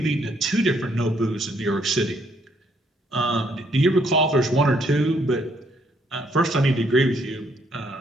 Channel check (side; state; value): both; normal; correlation 0.69